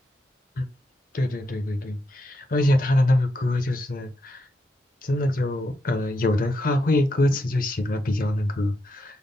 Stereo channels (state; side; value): normal; both; correlation 0.83